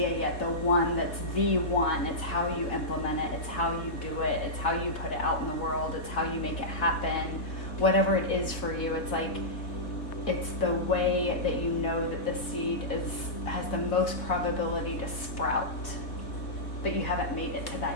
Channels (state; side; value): late; right; 3.6 ms